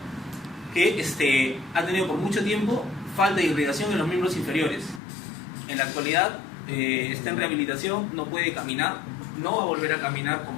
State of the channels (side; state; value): right; drops out; at 5.0 s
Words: que ha tenido por mucho tiempo falta de irrigación en los miembros inferiores. En la actualidad está en rehabilitación, no puede caminar, no va a volver a caminar